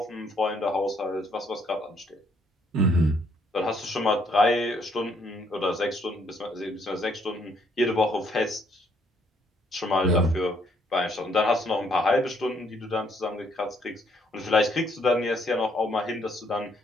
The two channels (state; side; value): normal; both; correlation 0.68